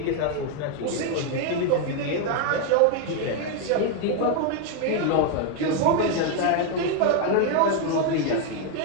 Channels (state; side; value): different; both; correlation 0.01